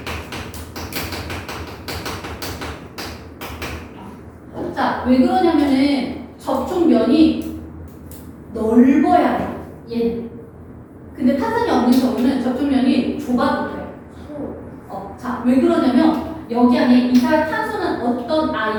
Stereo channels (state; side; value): identical; both; correlation 1.00